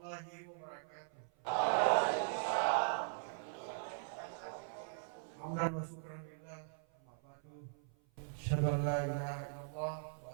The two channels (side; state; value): left; silent; 51 dB below the other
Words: wabarakatuh. Hamdan wa syukran lillah, amma ba'du. Asyhadu an la ilaha illallah wa